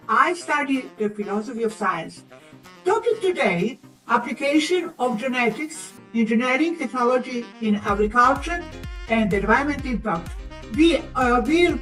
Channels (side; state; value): both; identical; correlation 1.00